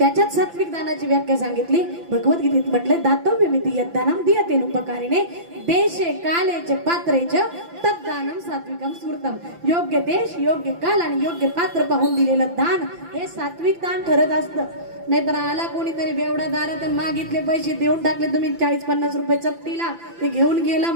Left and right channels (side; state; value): left; late; 5.9 ms